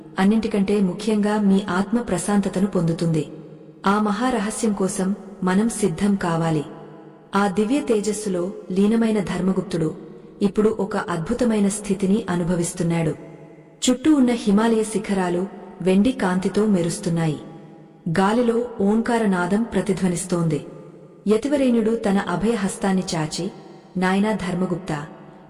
అన్నింటికంటే ముఖ్యంగా మీ ఆత్మ ప్రశాంతతను పొందుతుంది. ఆ మహారహస్యం కోసం మనం సిద్ధం కావాలి. ఆ దివ్య తేజస్సులో లీనమైన ధర్మగుప్తుడు ఇప్పుడు ఒక అద్భుతమైన స్థితిని అనుభవిస్తున్నాడు. చుట్టూ ఉన్న హిమాలయ శిఖరాలు వెండి కాంతితో మెరుస్తున్నాయి. గాలిలో ఓంకారనాదం ప్రతిధ్వనిస్తోంది. యతివరేణ్యుడు తన అభయహస్తాన్ని చాచి, నాయనా ధర్మగుప్త,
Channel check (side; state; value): both; identical; correlation 1.00